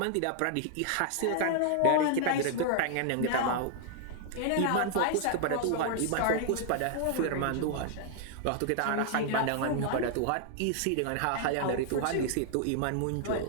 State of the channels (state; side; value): different; both; correlation 0.00